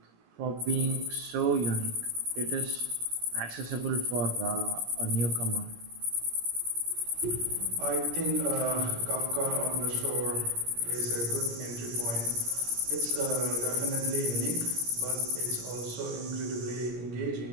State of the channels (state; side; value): late; left; 17 ms